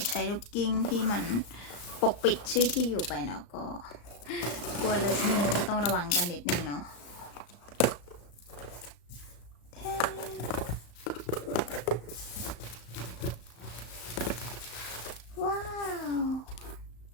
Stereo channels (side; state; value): right; late; 34 ms